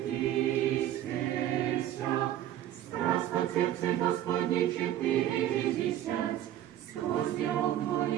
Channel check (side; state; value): left; quieter; 12.2 dB